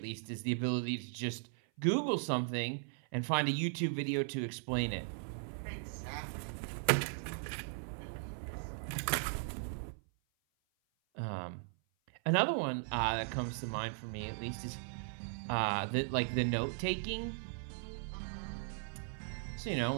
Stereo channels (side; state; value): left; silent; 53 dB below the other